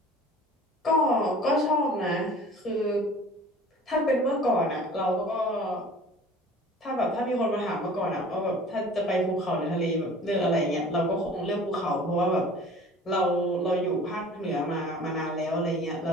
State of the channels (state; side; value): normal; both; correlation 0.45